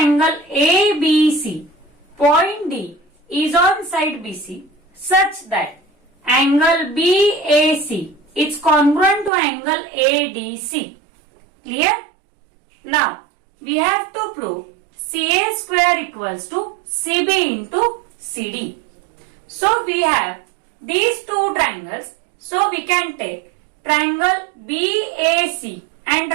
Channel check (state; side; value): drops out; left; at 9.3 s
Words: ABC, point D is on side BC such that angle BAC is congruent to angle ADC. Clear? Now, we have to prove CA square equals to CB into CD. So, we have these two triangles. So, we can take triangle BAC and